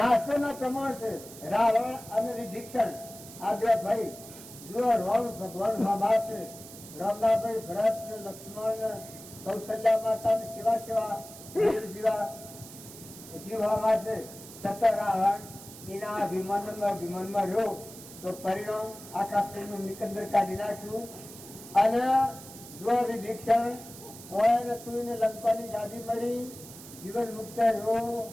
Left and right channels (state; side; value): noise; right; hiss, 16 dB below the sound